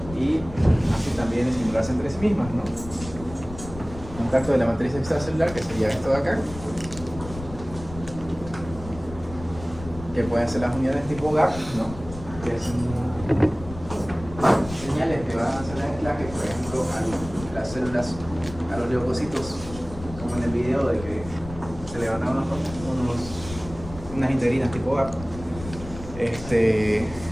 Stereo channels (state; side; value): noise; left; rumble, 13 dB below the sound